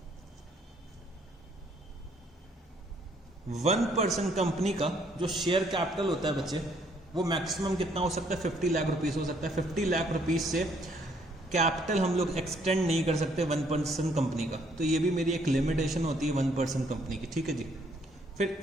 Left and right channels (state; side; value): normal; both; correlation 0.66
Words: 1% कंपनी का जो शेयर कैपिटल होता है बच्चे, वो मैक्सिमम कितना हो सकता है, 50 लाख रुपीस हो सकता है। 50 लाख रुपीस से कैपिटल हम लोग एक्सटेंड नहीं कर सकते 1% कंपनी का। तो ये भी मेरी एक लिमिटेशन होती है 1% कंपनी की। ठीक है जी, फिर